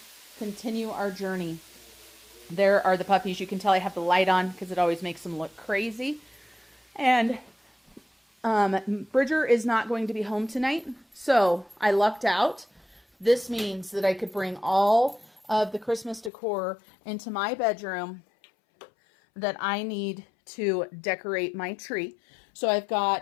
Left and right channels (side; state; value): right; drops out; at 16.3 s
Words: Continue our journey. There are the puppies. You can tell I have the light on because it always makes them look crazy. And Bridger is not going to be home tonight, so I lucked out. This means that I could bring all of the Christmas decor into my bedroom that I need to decorate my tree. So I've